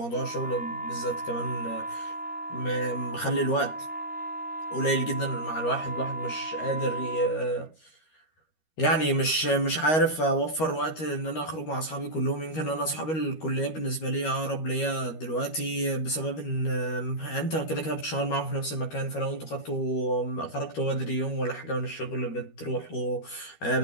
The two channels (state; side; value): late; right; 13 ms